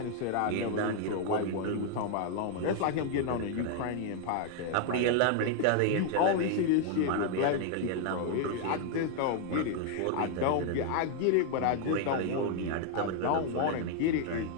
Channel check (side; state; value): both; different; correlation 0.00